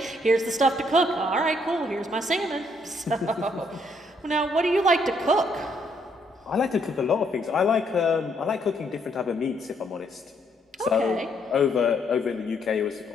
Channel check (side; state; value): both; normal; correlation 0.71